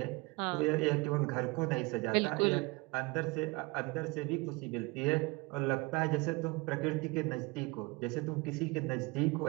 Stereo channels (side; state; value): left; quieter; 24.3 dB